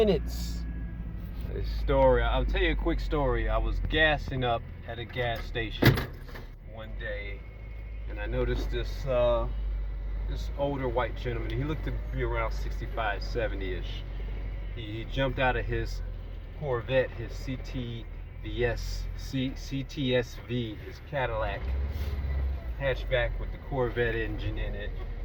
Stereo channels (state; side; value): identical; both; correlation 1.00